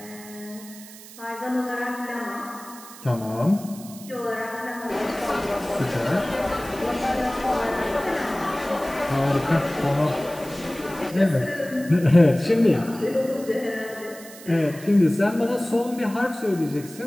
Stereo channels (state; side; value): noise; right; hiss, 17 dB below the sound